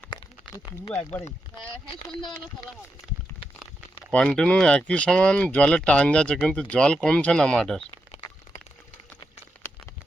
হ্যাঁ, সন্ধ্যাবেলা তোলা হবে। কন্টিনিউ একই সমান জলের টান যাচ্ছে, কিন্তু জল কমছে না মাঠের।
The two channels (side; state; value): both; normal; correlation 0.86